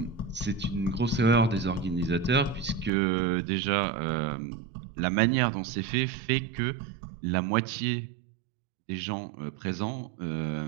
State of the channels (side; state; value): left; drops out; at 2.9 s